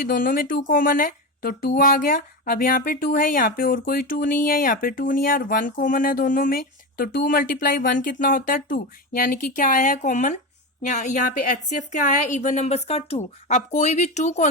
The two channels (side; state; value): both; normal; correlation 0.18